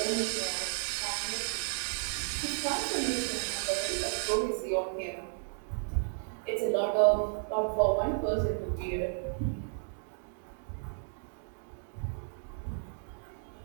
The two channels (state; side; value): silent; left; digital silence